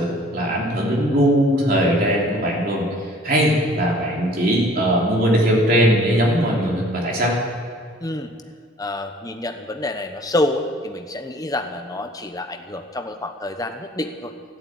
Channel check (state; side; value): normal; both; correlation 0.53